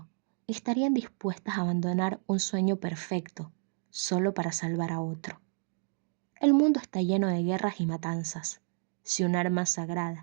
estarían dispuestas a abandonar un sueño perfecto solo para salvar a otro? El mundo está lleno de guerras y matanzas. Si un arma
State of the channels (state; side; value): silent; left; digital silence